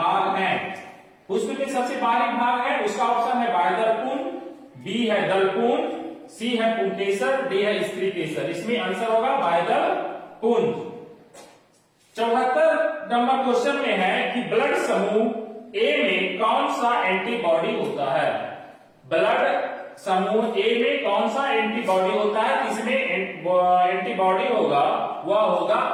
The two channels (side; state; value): both; identical; correlation 1.00